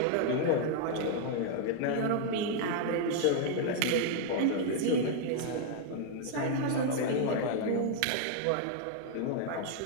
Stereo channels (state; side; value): different; both; correlation -0.01